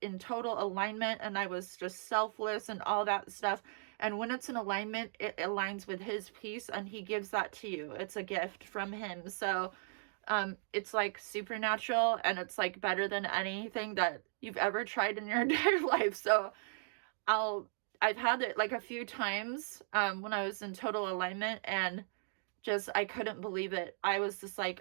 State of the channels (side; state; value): left; silent; digital silence